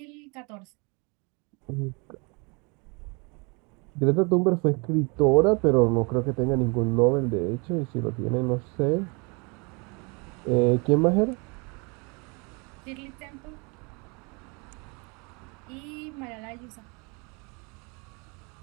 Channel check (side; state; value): left; quieter; 31.0 dB